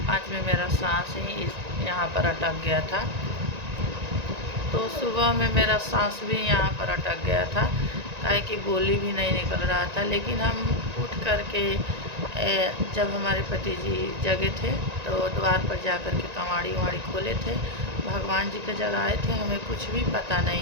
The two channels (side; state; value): left; late; 1.9 ms